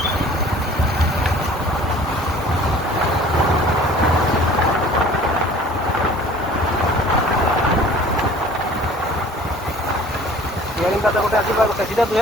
गोटे आस सीधा तुझे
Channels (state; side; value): normal; both; correlation 0.49